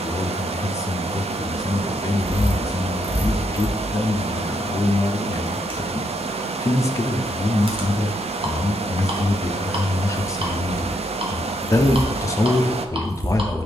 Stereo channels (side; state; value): both; normal; correlation 0.76